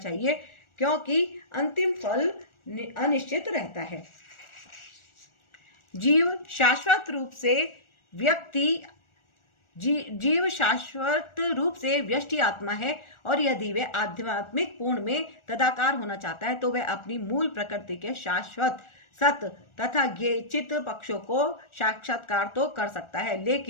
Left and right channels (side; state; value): right; late; 1.4 ms